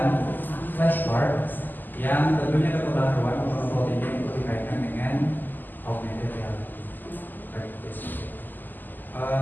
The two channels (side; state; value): right; late; 0.088 ms